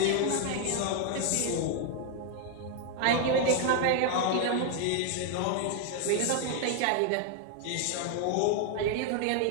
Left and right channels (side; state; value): both; different; correlation 0.01